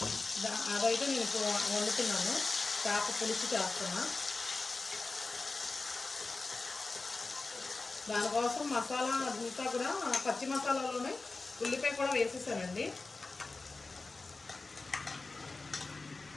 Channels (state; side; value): quieter; right; 3.6 dB